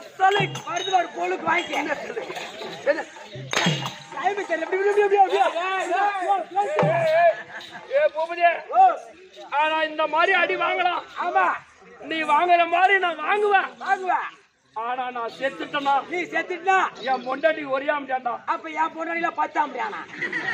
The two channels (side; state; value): both; identical; correlation 1.00